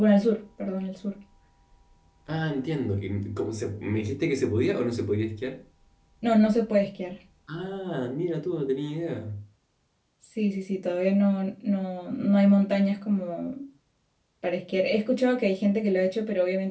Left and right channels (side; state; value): both; identical; correlation 1.00